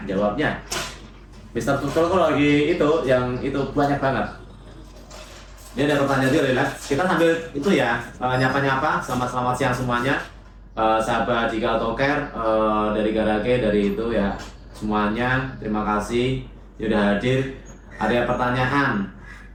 jawabnya. Mister Pucul tuh lagi yang itu banyak banget. Ini ada pertanyaan juga, relax. Kita sambil itu ya, nyapa-nyapa, selamat siang semuanya. Sahabat Jika Autocare dari Garage, dari itu ya semuanya, terima kasih sudah hadir. Ada pertanyaan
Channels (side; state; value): both; identical; correlation 1.00